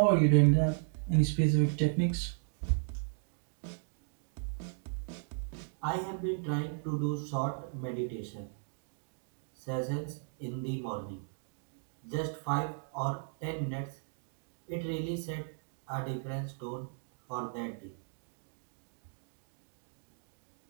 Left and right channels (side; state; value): left; silent; digital silence